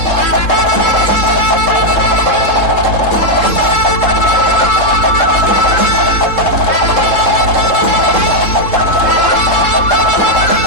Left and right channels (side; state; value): right; late; 3.7 ms